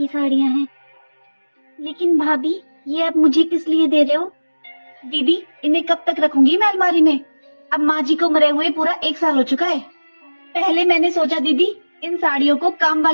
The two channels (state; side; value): inverted; both; correlation -1.00